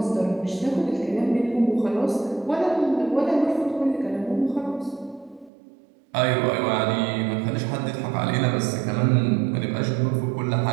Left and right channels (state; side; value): drops out; left; at 5.5 s